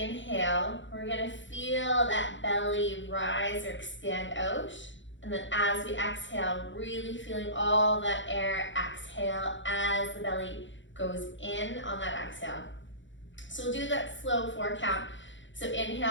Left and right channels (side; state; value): right; late; 0.54 ms